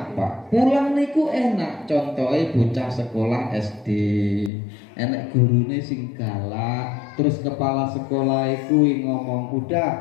Pak? Pulang niku enak. Contohnya bocah sekolah SD, enek gurune sing galak, terus kepala sekolah iku ngomong,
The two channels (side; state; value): right; drops out; at 4.5 s